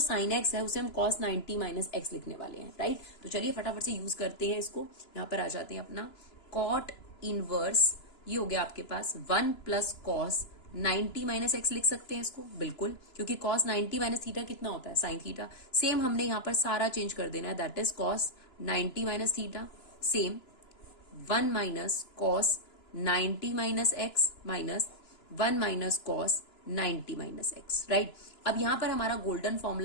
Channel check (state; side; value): late; right; 2.9 ms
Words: एक्स है उसे हम कॉस 90 माइनस एक्स लिखने वाले हैं, राइट। तो चलिए फटाफट से यूज करते हैं इसको। यहाँ पर आ जाते हैं अपना कॉट इनवर्स, ये हो गया आपके पास 1 प्लस कॉस 90 माइनस एक्स लिख सकते हैं इसको, बिल्कुल, क्योंकि कॉस 90 माइनस थीटा कितना होता है, साइन थीटा। सेम हमने यहाँ पर सारा चेंज कर देना है, that is cos 90 minus theta, same 1 minus cos 90 minus x minus 1 minus cos 90 minus x, right. अब यहां पर हमारा गोल्डन